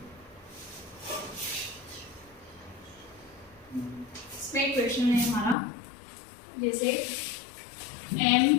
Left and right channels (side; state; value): right; drops out; at 5.6 s